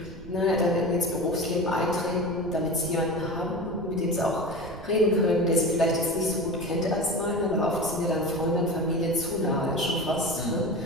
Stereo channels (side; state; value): right; noise; rumble, 15 dB below the sound